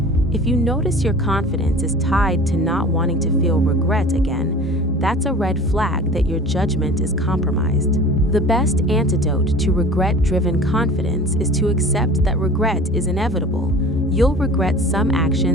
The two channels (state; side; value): normal; both; correlation 0.41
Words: If you notice your confidence is tied to not wanting to feel regret again, that's a red flag that your judgment is compromised. The best antidote to regret-driven confidence is to accept that regret is inevitable. You'll regret some